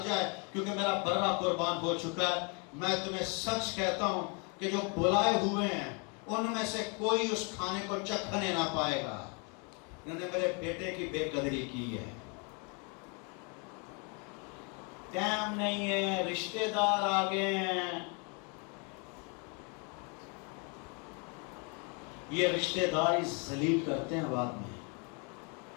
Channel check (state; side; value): quieter; right; 34.6 dB